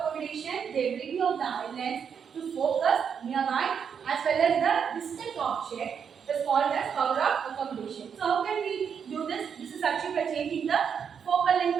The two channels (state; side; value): quieter; left; 7.2 dB